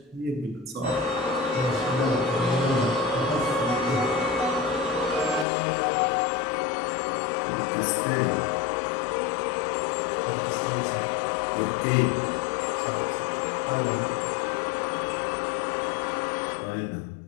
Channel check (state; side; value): drops out; right; at 5.5 s